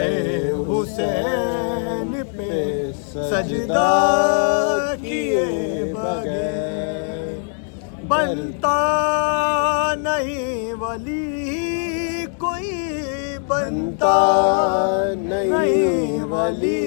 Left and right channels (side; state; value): right; silent; 65 dB below the other